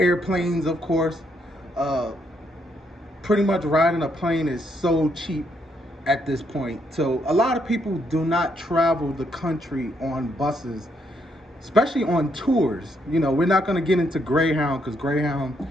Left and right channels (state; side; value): normal; both; correlation 0.75